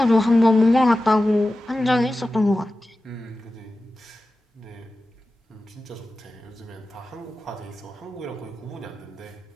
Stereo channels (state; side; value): normal; both; correlation 0.94